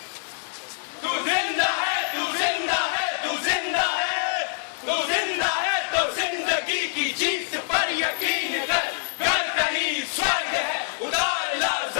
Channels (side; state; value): right; silent; 60 dB below the other